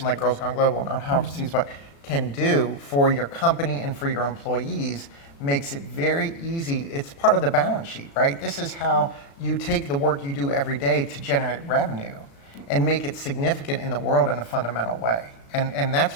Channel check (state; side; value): late; right; 36 ms